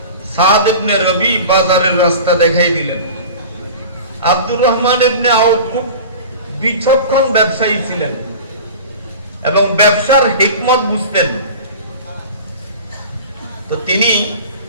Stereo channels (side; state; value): both; inverted; correlation -0.36